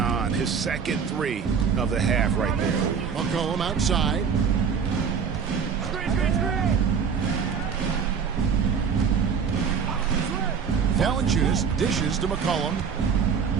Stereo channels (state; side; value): quieter; left; 6.5 dB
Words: His second three of the half right there. McCollum outside. Valanciunas dishes to McCollum.